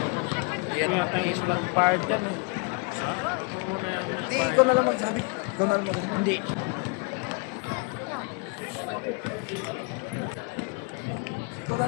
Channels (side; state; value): right; quieter; 30.3 dB